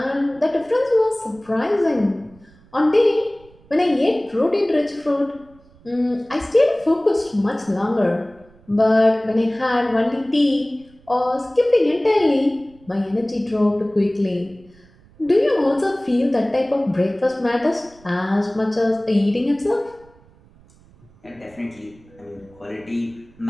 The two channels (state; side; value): noise; right; rumble, 27 dB below the sound